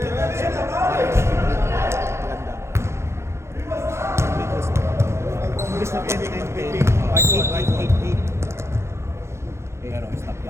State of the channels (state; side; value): late; left; 0.13 ms